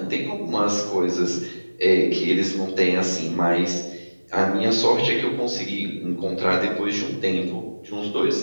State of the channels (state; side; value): inverted; both; correlation -1.00